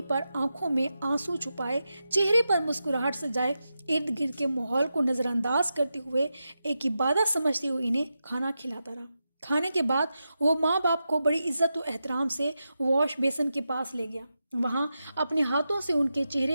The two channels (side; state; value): both; inverted; correlation -0.89